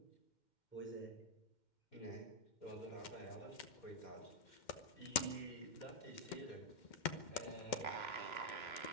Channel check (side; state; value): right; late; 2.1 ms